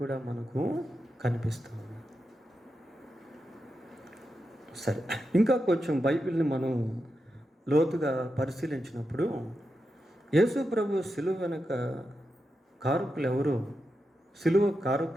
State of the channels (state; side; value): normal; both; correlation 0.88